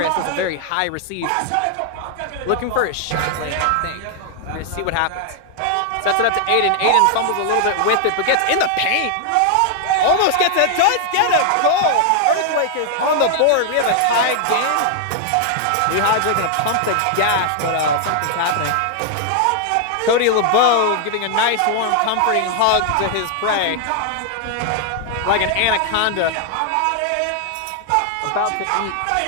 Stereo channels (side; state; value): both; different; correlation 0.00